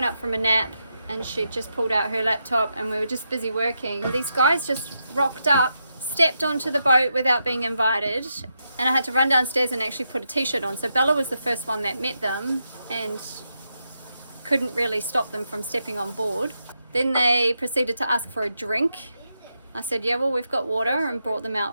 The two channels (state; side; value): inverted; both; correlation -0.84